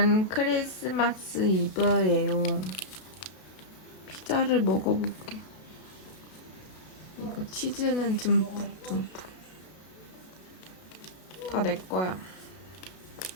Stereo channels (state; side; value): late; right; 32 ms